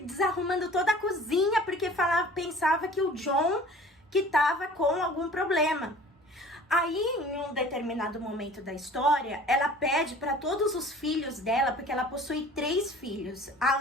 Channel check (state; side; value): normal; both; correlation 0.46